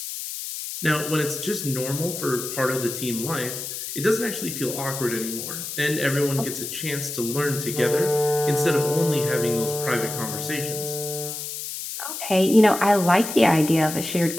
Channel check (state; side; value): noise; left; hiss, 7 dB below the sound